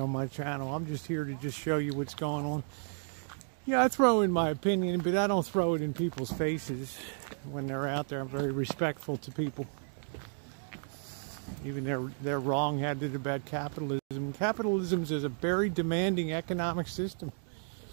my channel. I'm just here to just show you what's going on. Yeah, I throw in my opinion, but I don't throw it in people's faces when they're out there. I'm very respectful to people. Even they're wrong-headed about capitalism. Capitalism is a very demanding economic system.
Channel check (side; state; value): left; silent; digital silence